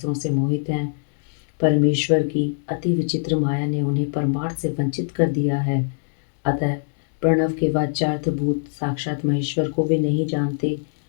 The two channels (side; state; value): right; silent; digital silence